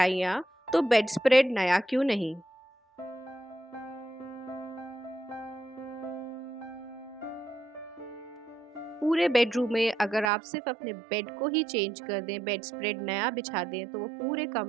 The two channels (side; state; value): left; drops out; at 10.3 s